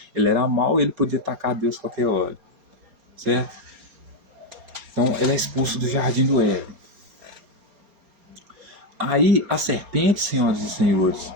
ele era mau e ele podia atacar Deus qualquer hora. Certo? Então ele é expulso do jardim do Éden. Aí a serpente, senhoras e senhores,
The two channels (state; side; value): late; left; 4.3 ms